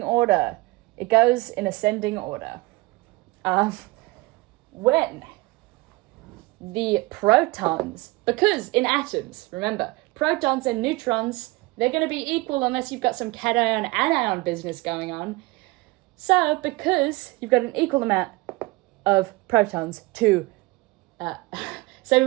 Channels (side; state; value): left; quieter; 22.2 dB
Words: order. It goes in ascending order. When the protons, because in atoms, remember, protons and neutrons, they're going to be equal unless you've got some cation-anion business going on. So, because you've got an equal amount of protons to, same